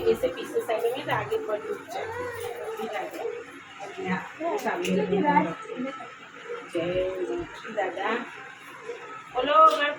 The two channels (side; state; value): both; identical; correlation 1.00